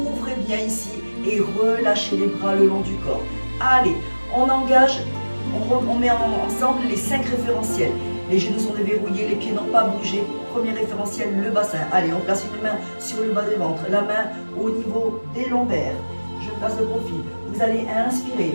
bien ici et relâchez les bras le long du corps. Allez, on engage, on met ensemble les 5 référentiels. Les genoux sont déverrouillés, les pieds n'ont pas bougé. Premier référentiel, le bassin. Allez, on place une main sur le bas du ventre, la main au niveau des lombaires. Je place de profil. Vous allez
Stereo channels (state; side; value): inverted; both; correlation -1.00